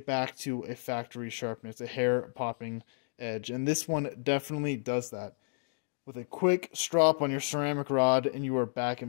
back to a factory sharpness, a hair-popping edge. And this one definitely does that. With a quick strop on your ceramic rod, and you are back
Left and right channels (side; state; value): right; silent; 57 dB below the other